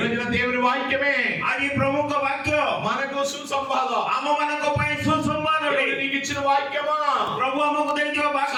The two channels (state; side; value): identical; both; correlation 1.00